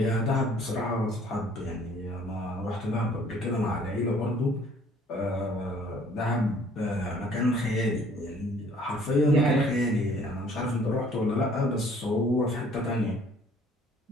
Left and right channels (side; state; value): both; normal; correlation 0.57